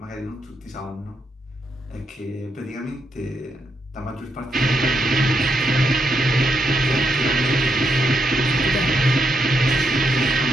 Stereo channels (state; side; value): normal; both; correlation 0.80